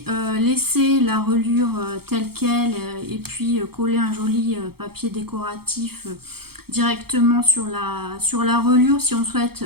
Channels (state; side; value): late; left; 0.95 ms